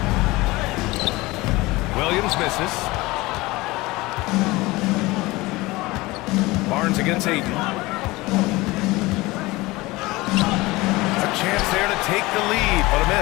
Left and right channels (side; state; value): right; quieter; 21.1 dB